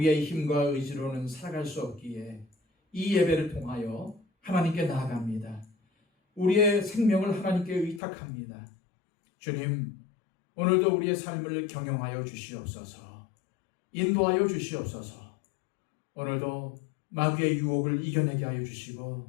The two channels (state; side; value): drops out; right; at 8.0 s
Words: 힘과 의지로는 살아갈 수 없기에 이 예배를 통하여 하나님께 나아갑니다. 우리의 생명을 하나님께 의탁합니다. 주님, 오늘도 우리의 삶을 경영하여 주시옵소서. 인도하여 주시옵소서. 오늘도 마귀의 유혹을 이겨내게 하여 주시고